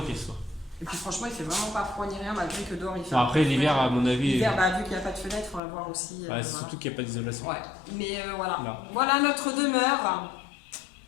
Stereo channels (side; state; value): right; drops out; at 5.6 s